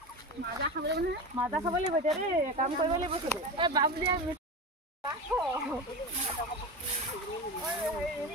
মাজা খাব লাগিব এতিয়া দেই কাম কৰিব লাগিব চবেই বাবুলিয়া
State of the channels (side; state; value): both; normal; correlation 0.24